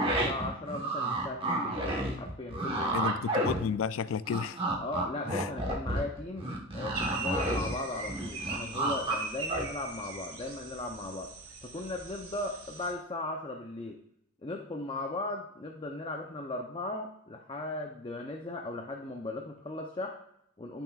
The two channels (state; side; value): normal; both; correlation 0.25